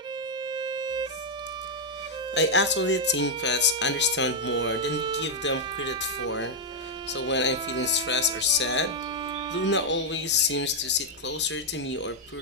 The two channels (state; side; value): normal; both; correlation -0.02